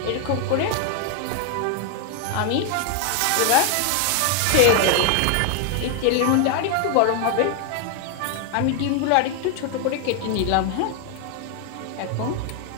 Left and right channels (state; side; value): different; both; correlation 0.00